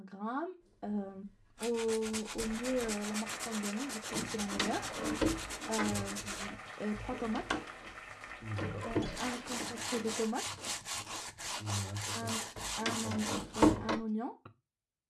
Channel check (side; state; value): both; identical; correlation 1.00